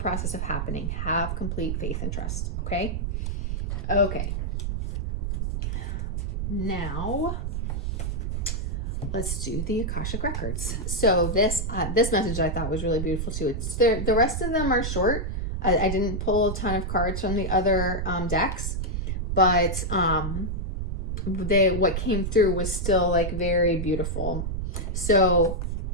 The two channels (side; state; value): right; noise; rumble, 2 dB below the sound